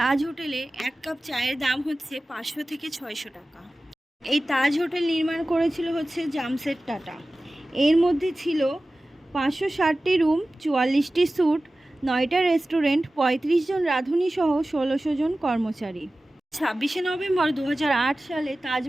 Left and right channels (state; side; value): normal; both; correlation 0.96